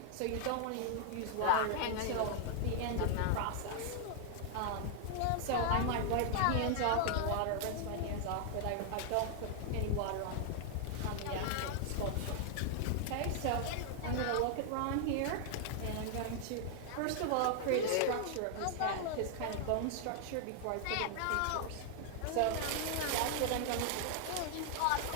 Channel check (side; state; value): both; different; correlation 0.00